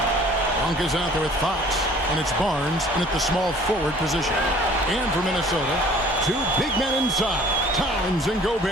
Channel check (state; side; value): normal; both; correlation 0.52